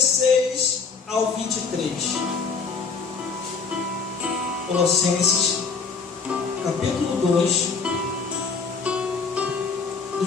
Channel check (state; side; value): quieter; right; 5.1 dB